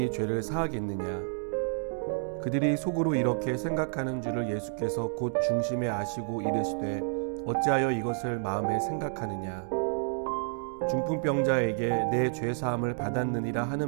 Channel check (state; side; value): silent; left; digital silence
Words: 죄를 사하겠느냐. 그들이 속으로 이렇게 생각하는 줄을 예수께서 곧 중심에 아시고 이르시되 어찌하여 이것을 마음에 생각하느냐. 중풍병자에게 내 죄 사함을 받았느니라